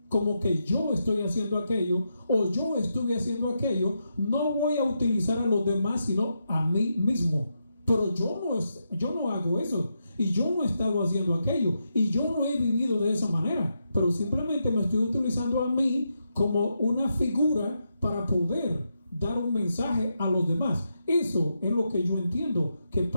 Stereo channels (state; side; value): inverted; both; correlation -0.84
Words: como que yo estoy haciendo aquello o yo estuve haciendo aquello, no voy a utilizar a los demás sino a mí mismo. Pero yo no hago eso y yo no he estado haciendo aquello y yo no he vivido de esa manera, pero simplemente me estoy utilizando a mí como una figura para poder dar un mensaje a los demás. Eso es lo que yo entiendo que